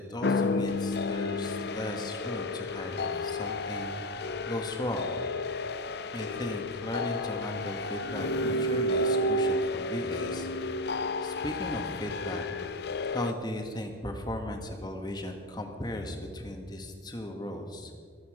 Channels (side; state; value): both; normal; correlation 0.14